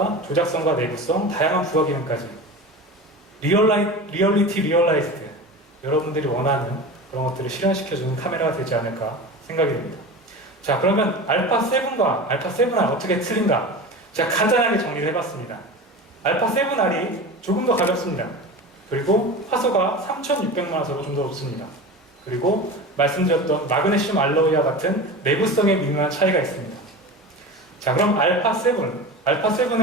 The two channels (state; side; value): normal; both; correlation 0.30